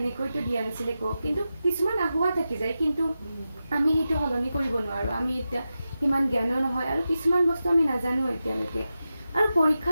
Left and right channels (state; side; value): inverted; both; correlation -0.91